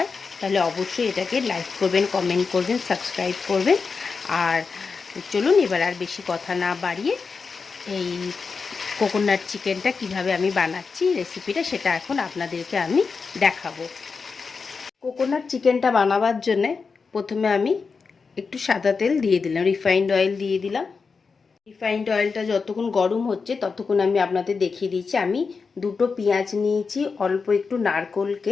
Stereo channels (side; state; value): right; quieter; 5.0 dB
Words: তাহলে অবশ্যই এটাকে লাইক করবেন, কমেন্ট করবেন, সাবস্ক্রাইব করবেন। আর চলুন এবার আর বেশি কথা না বাড়িয়ে এই কোকোনাট চিকেনটা কিভাবে আমি বানাচ্ছি রেসিপিটা, সেটা এখন আপনাদেরকে আমি দেখাবো। কোকোনাট চিকেনটা বানাবার জন্যে প্রথমে আমি একটু সাদা তেল দিয়ে দিলাম, রিফাইন্ড অয়েল দিয়ে দিলাম। রিফাইন্ড অয়েলটা যতক্ষণ গরম হচ্ছে ততক্ষণ আমি আপনাদের দেখিয়ে দিচ্ছি। আমি দুটো পেঁয়াজ নিয়েছি, অল্প একটু